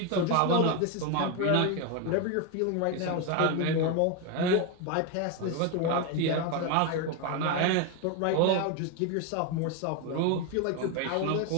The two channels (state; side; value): different; both; correlation 0.02